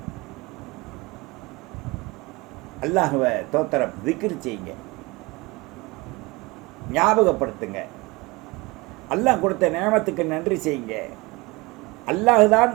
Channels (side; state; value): left; quieter; 23.7 dB